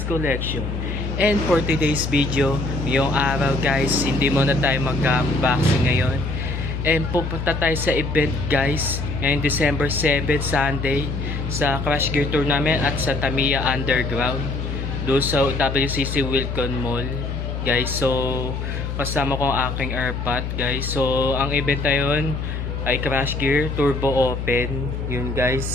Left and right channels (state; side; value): noise; left; hum, 4 dB below the sound